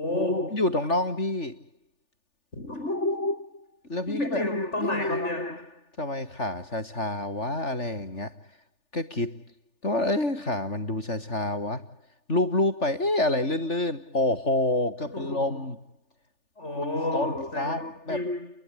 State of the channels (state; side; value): late; right; 3.4 ms